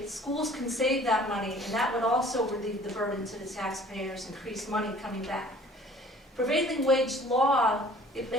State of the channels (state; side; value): normal; both; correlation 0.52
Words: schools can save that money, and that would also relieve the burden to the taxpayers, increase money coming back. Prevailing wage law, it